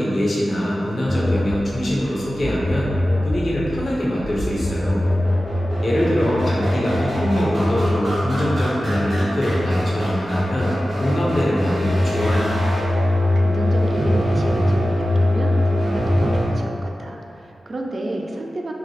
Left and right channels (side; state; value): both; normal; correlation 0.95